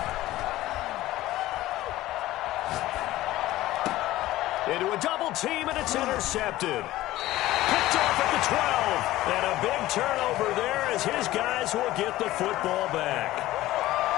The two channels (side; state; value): right; quieter; 16.2 dB